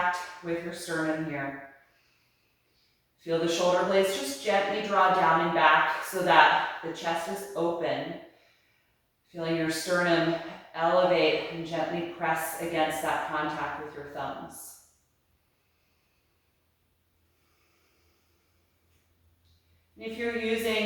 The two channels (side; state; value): both; identical; correlation 1.00